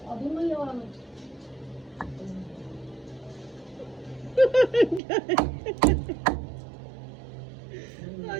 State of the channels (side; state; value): left; drops out; at 5.0 s